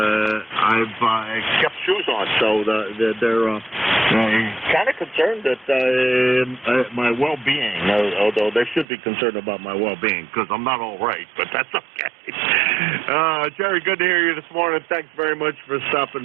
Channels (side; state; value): left; drops out; at 8.8 s